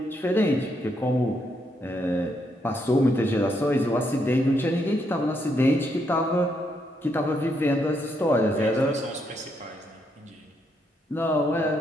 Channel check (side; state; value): both; normal; correlation 0.77